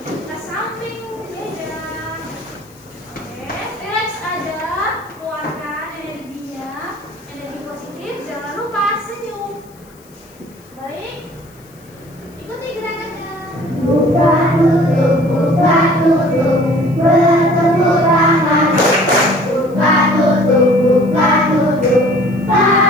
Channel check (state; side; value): noise; left; hiss, 28 dB below the sound